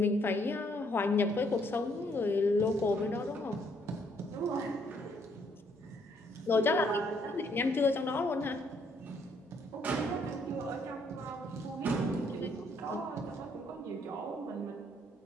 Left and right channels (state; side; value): normal; both; correlation 0.68